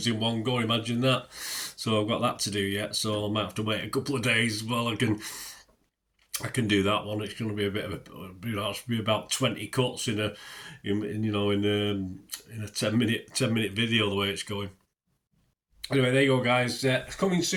in one go. Imagine that. So I've got that to do yet. So I might have to wait a couple of days while I can do that one. It's going to be a bit of be about 20 cuts in a 10-minute video the way it's going. Anyway, there you go, guys. Coming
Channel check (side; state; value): both; identical; correlation 1.00